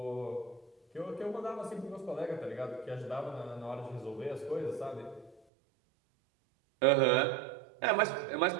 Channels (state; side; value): drops out; left; at 5.4 s